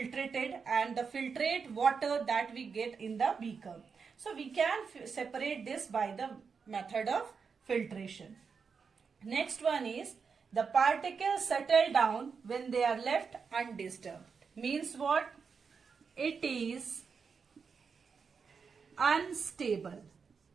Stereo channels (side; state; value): left; quieter; 5.7 dB